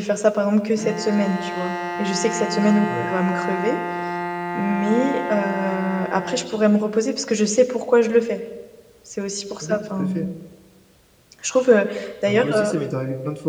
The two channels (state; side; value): identical; both; correlation 1.00